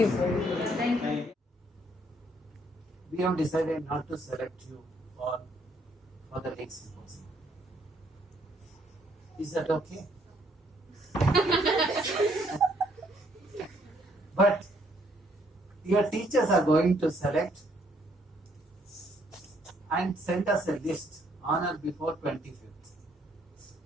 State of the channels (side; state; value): both; normal; correlation 0.68